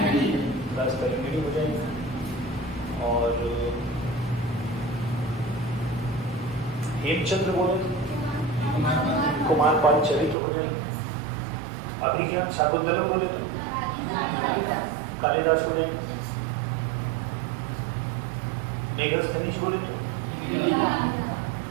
क्लास करेंगे हो जाएगी। और हेमचंद्र बोले तो कुमार पाल चरित्र हो जाएंगे। अभिज्ञान शाकुंतलम बोले तो कालिदास हो जाएंगे। मेघस खनिज बोले तो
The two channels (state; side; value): drops out; left; at 10.4 s